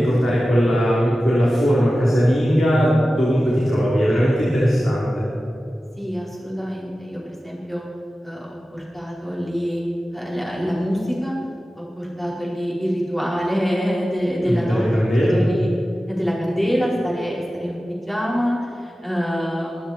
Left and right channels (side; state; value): both; normal; correlation 0.94